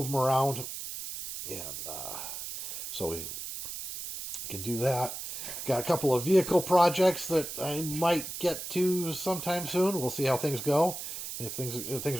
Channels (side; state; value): right; noise; hiss, 7 dB below the sound